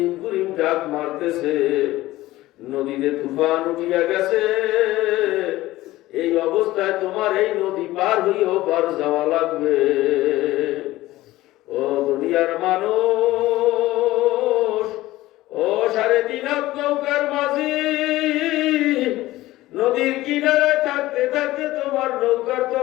গুরিম ডাক মারতেছে, নদীতে তুফান উঠিয়া গেছে। এই অবস্থায় তোমার এই নদী পার হইও পার যাওয়া লাগবে। ও দুনিয়ার মানুষ, ও 3.5 হাত নৌকার মাঝি, নদীর কিনারে থাকতে থাকতে তোমার নৌকার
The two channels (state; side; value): quieter; right; 17.0 dB